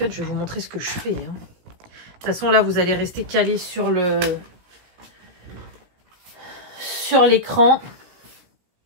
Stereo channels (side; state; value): left; late; 17 ms